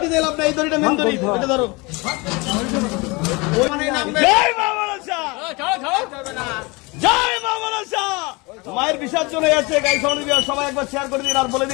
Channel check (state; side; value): quieter; right; 26.2 dB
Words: দিলাম না এই দড়িটা মেন্দুরি এটা ধরো জয় মা মনসা জয় মা মনসা মায়ের বিসর্জন হয়ে যাচ্ছে গাই সবাই একবার শেয়ার করে দিন আর বলে